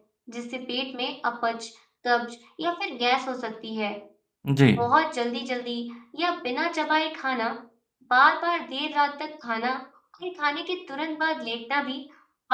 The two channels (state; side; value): identical; both; correlation 1.00